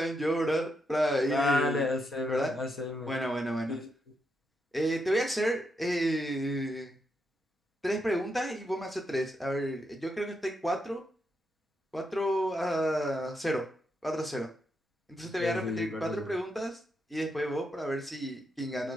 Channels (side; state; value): both; normal; correlation 0.82